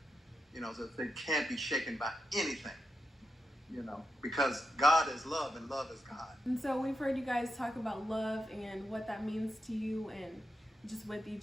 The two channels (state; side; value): normal; both; correlation 0.86